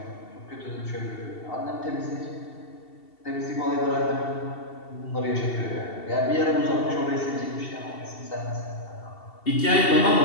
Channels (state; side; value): late; right; 2.7 ms